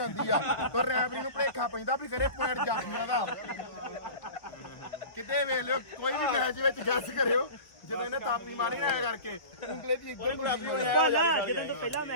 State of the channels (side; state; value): right; late; 1.1 ms